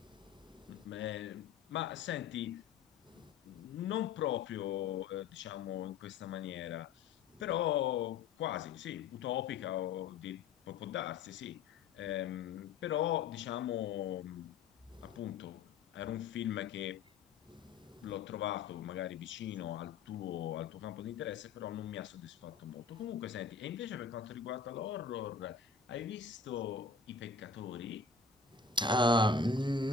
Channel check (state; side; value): quieter; right; 5.2 dB